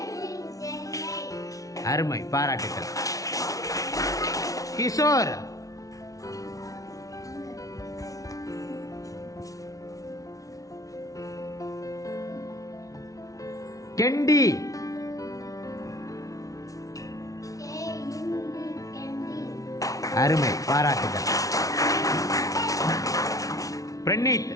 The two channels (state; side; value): late; right; 0.17 ms